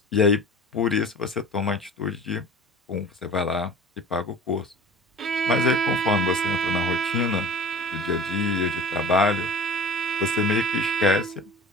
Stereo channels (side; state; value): both; normal; correlation 0.40